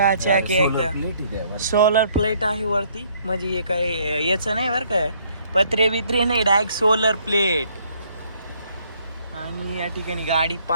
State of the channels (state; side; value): inverted; both; correlation -0.65